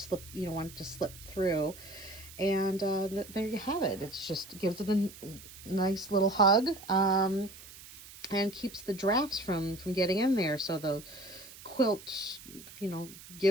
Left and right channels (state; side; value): noise; right; hiss, 17 dB below the sound